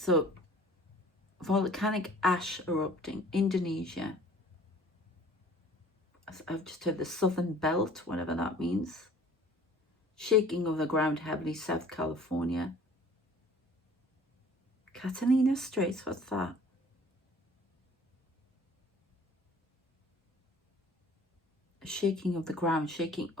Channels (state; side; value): normal; both; correlation 0.50